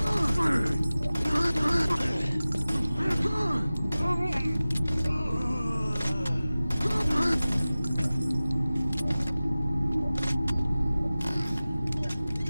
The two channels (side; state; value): both; inverted; correlation -0.97